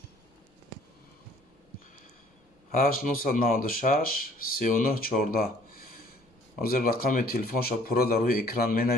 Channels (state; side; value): normal; both; correlation 0.57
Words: هشت 996 39 14. حاضر رقم تلفنشو پورا در روی اکران می